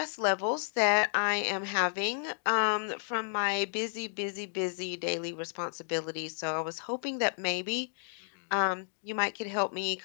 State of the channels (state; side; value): silent; right; digital silence